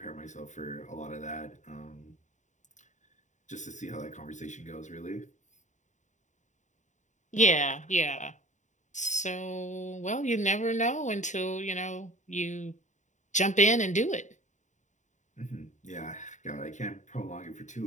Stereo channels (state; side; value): late; right; 0.35 ms